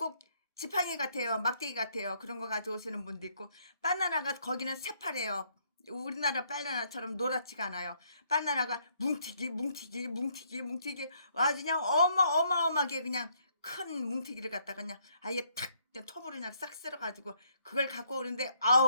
지팡이 같아요. 막대기 같아요. 그런 거 가져오시는 분도 있고 바나나가 거기는 새파래요. 우리나라 바나나처럼 노랗지가 않아요. 바나나가 뭉티기 아주 그냥 어마어마하게 그냥 큰 뭉티기를 갖다가 그냥 아예 탁 톱으로 그냥 싹 쓸어가지고 그걸 갖고 오는데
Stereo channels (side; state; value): both; inverted; correlation -0.70